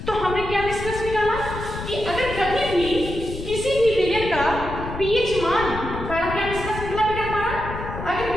तो हमने क्या निष्कर्ष निकाला कि अगर कभी भी किसी भी विलयन का pH मान पहला क्या निष्कर्ष निकला बेटा हमारा, अगर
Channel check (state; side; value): noise; left; rumble, 8 dB below the sound